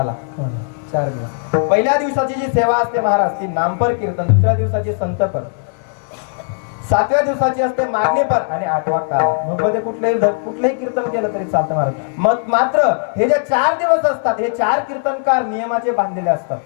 4 दिवस. पहिल्या दिवसाची जी सेवा असते महाराज ती नामपर कीर्तन, दुसऱ्या दिवसाची संतपर, 7व्या दिवसाची असते मागणीपर आणि 8वा काला. मग मध्ये कुठलंही कीर्तन केलं तरी चालतं महाराज. मग मात्र हे जे 4 दिवस असतात हे 4 कीर्तनकार नियमाचे बांधलेले असतात.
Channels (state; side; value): silent; right; 68 dB below the other